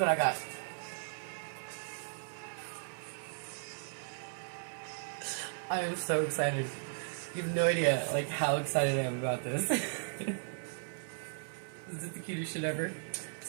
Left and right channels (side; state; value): left; silent; digital silence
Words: I got. I am so excited. You have no idea, like, how excited I am about this. Is it the cutest shit ever?